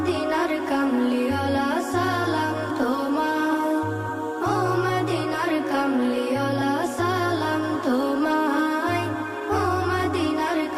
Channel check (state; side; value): identical; both; correlation 1.00